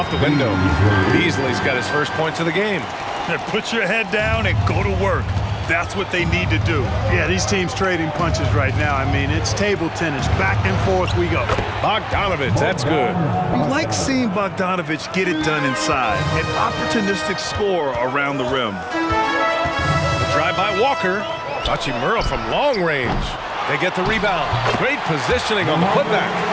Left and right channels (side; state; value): both; identical; correlation 1.00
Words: the window. Beasley's got his first points of the game. Put your head down and go to work. That's what they need to do. Yeah, these teams trading punches right now. I mean, it's table tennis. Back and forth we go. Bogdanovich, that's good. You like seeing Bogdanovich get it done inside. An opportunistic score around the rim. Drive by Walker. Hachimura from long range. They get the rebound. Great positioning on the putback.